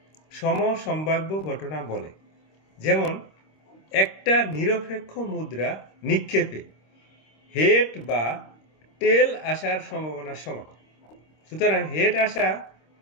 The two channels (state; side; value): late; right; 26 ms